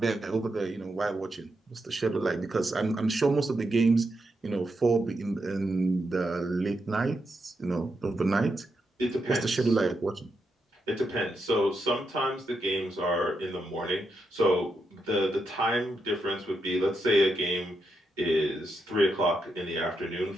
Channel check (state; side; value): normal; both; correlation 0.83